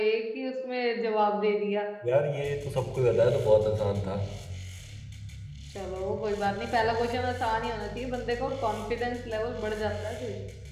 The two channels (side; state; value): both; identical; correlation 1.00